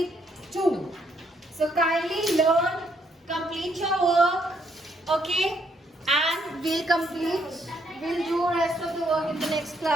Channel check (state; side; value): normal; both; correlation 0.72